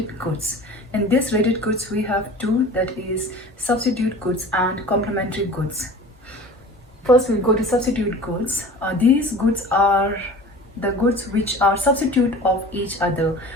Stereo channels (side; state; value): both; normal; correlation 0.40